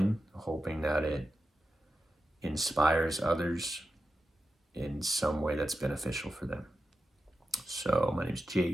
hoping that it inspires others in some way that's beneficial for them. So my name's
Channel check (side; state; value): both; normal; correlation 0.91